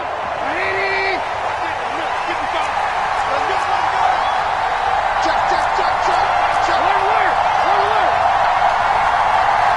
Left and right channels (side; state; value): both; identical; correlation 1.00